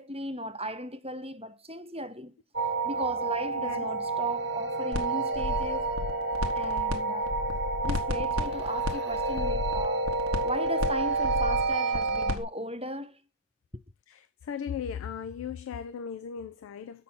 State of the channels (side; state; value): both; normal; correlation -0.15